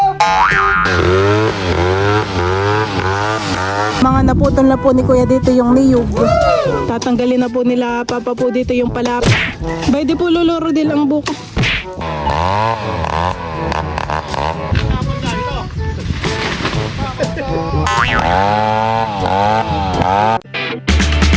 Mga naputol na po ni Kuya dito yung niyog. Tatanggalin na po nila Papa po dito yung palapa. Bay di po luluro din ang buko.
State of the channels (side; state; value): both; identical; correlation 1.00